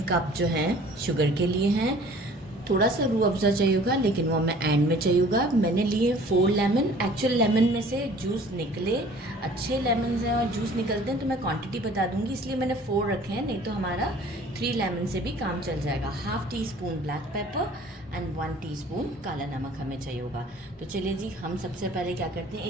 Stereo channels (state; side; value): normal; both; correlation 0.50